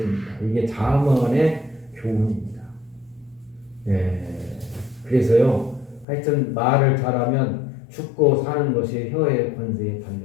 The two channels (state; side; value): drops out; right; at 6.1 s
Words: 이게 잠언의 교훈입니다. 그래서요 하여튼 말을 잘하면 죽고 사는 것이 혀의 권세에